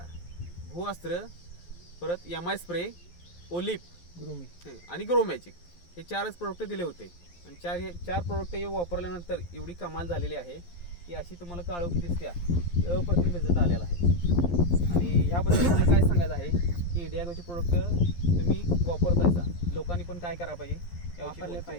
भूअस्त्र, परत MI स्प्रे, ओलिप आणि ग्रो मॅजिक हे 4च प्रोडक्ट दिले होते. आणि चार प्रोडक्ट वापरल्यानंतर एवढी कमाल झालेली आहे की अशी तुम्हाला काळोखी दिसत्या. अप्रतिम रिझल्ट आलेला आहे. आणि ह्याबद्दल मला काय सांगायचं आहे की इंडिया ग्रोचे प्रोडक्ट तुम्ही वापरतायचा लोकांनी पण काय करायला पाहिजे, वापरले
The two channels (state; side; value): late; right; 11 ms